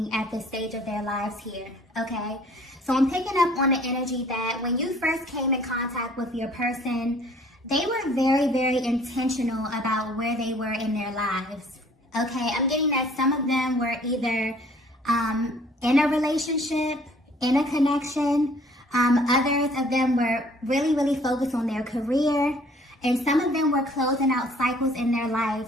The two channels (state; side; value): normal; both; correlation 0.56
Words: at this stage of their lives here, okay? So I'm picking up on the energy that when you first came in contact with your person, they were very, very intentional about where they were in their lives, okay? I'm getting that some of them were either in a relationship, in a connection. Others of them were really, really focused on their career. And some of them were closing out cycles in their